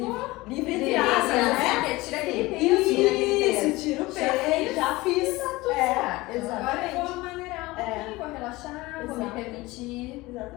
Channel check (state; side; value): quieter; right; 20.6 dB